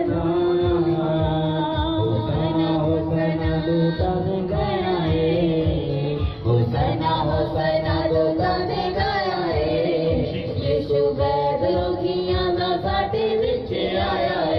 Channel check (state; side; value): identical; both; correlation 1.00